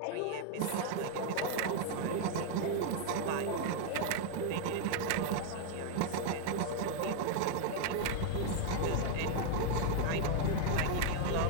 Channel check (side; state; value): both; different; correlation 0.00